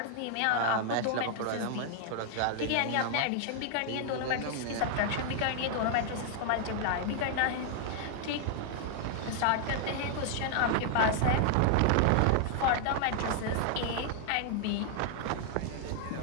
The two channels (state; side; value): different; both; correlation 0.00